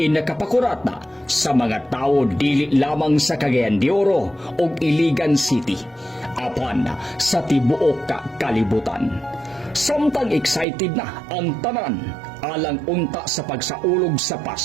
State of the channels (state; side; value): drops out; left; at 10.7 s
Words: nakapakurata sa mga tao dili lamang sa Cagayan de Oro ug Iligan City apan sa tibuok kalibutan. Samtang excited na ang tanan alang unta sa pagsaulog sa